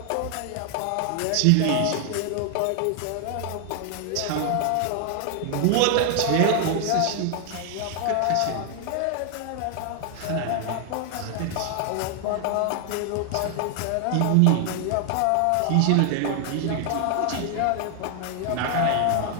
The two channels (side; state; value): both; different; correlation 0.00